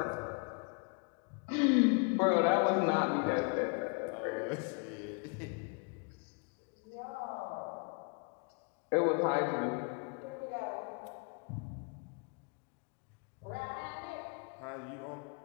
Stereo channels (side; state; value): right; quieter; 34.3 dB